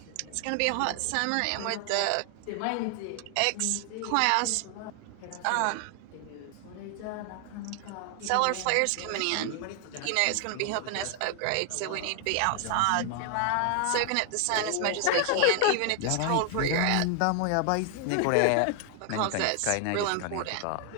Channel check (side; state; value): both; different; correlation 0.00